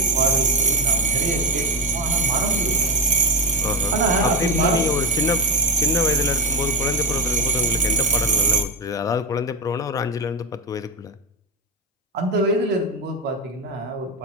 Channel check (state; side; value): normal; both; correlation 0.14